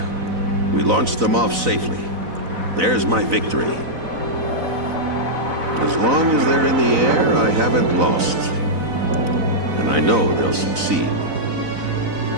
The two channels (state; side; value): late; left; 4.0 ms